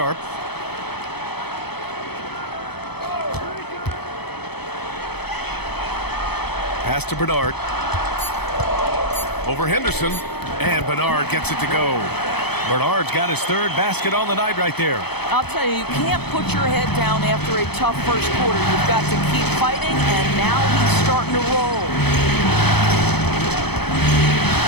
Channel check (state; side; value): late; right; 0.97 ms